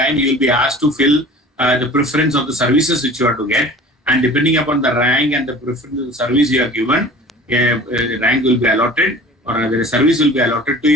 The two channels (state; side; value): normal; both; correlation 0.42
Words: you will be asked to fill the preference of the services which you are to get, and depending upon the rank and the preference of the service you are given, a rank will be allotted, or a service will be allotted to